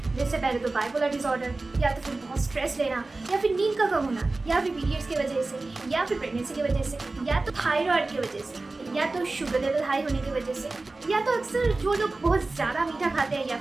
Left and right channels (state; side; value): quieter; left; 3.3 dB